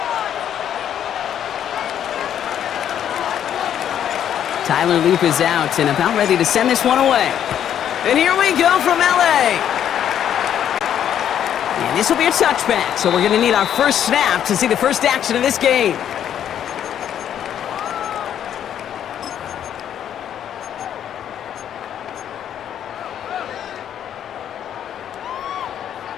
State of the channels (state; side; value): quieter; right; 9.8 dB